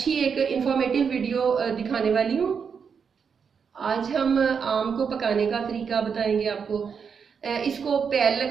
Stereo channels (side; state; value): left; quieter; 6.4 dB